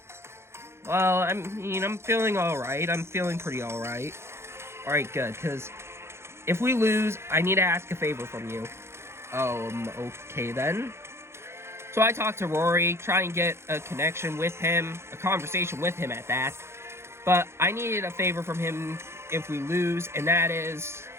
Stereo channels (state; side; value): late; left; 0.12 ms